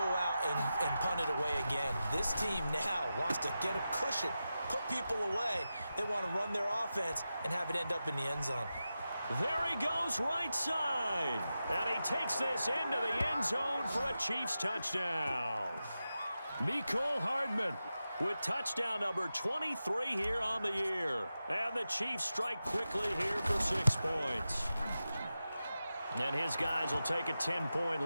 out and punt it away again. This team now wants to get a cushion, put people away. They want to run their offense and have it end up in the end zone. There he goes right side. And he takes this into the end zone for a Chiefs touchdown. Mecole Hardman with touchdown number 23 here on the year. And the Chiefs strike quickly here for 6 points. And his guys will take a 10-point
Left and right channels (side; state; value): both; inverted; correlation -0.92